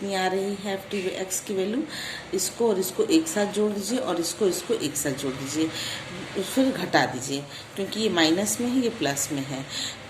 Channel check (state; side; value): identical; both; correlation 1.00